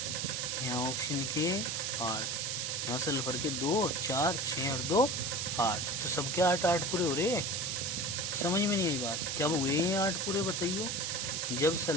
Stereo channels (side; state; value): right; noise; hiss, 1 dB below the sound